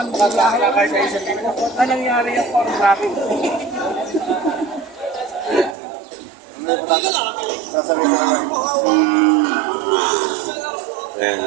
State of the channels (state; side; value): drops out; left; at 5.8 s